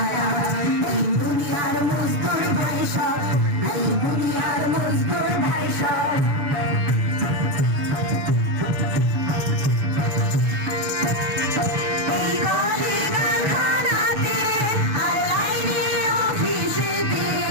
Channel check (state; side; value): late; left; 7.0 ms